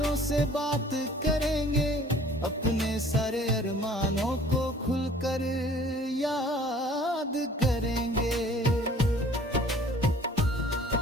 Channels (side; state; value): both; normal; correlation 0.52